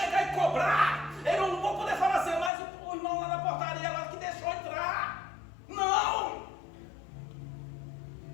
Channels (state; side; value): drops out; right; at 2.5 s